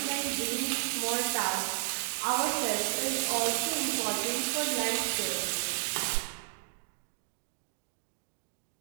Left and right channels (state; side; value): silent; left; digital silence